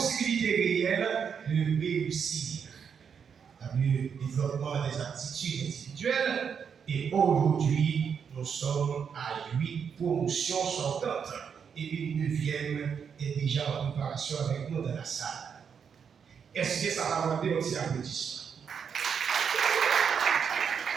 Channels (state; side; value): quieter; left; 6.9 dB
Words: réelles de réussir le développement des aptitudes individuelles. Et aujourd'hui, nous sommes à 8 promotions sortantes et une 9e est déjà en préparation avec nous dans la salle. Est-ce que ça va demander un petit applaudissement?